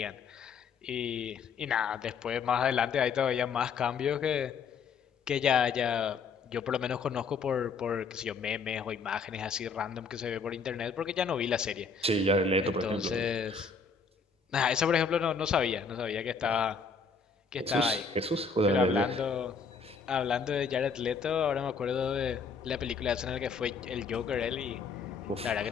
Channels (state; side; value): quieter; right; 5.1 dB